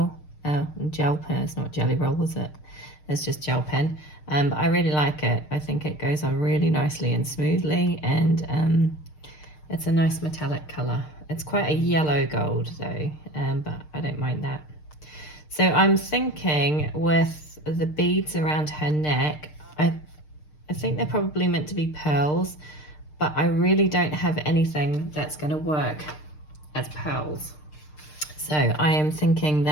gel pen. It's not Jelly Roll, is it? It's just gel pen. But I really like it. I think it goes on really nicely and smoothly, and it's a nice metallic colour. It's quite a yellow gold though, but I don't mind that. So I'm thinking with the beads around her neck, I think they're probably meant to be pearls, but I really don't have anything that's going to work as pearls. So I am thinking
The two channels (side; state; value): right; late; 6.6 ms